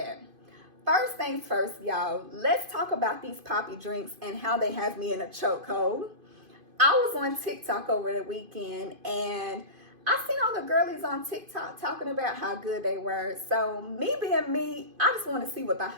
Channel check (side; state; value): left; late; 2.5 ms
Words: First things first, y'all, let's talk about these poppy drinks and how they have me in a chokehold. I was on TikTok over the weekend and I seen all the girlies on TikTok talking about how good they were. So me being me, I just want to see what the